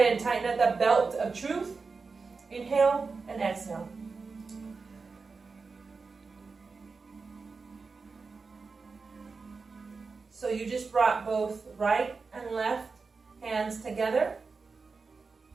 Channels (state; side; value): quieter; left; 4.5 dB